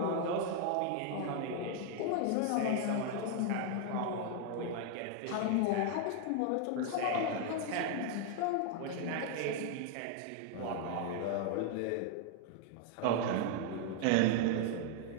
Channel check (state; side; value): different; both; correlation 0.00